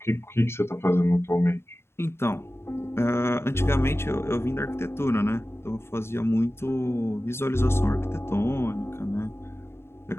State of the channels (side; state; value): right; late; 0.12 ms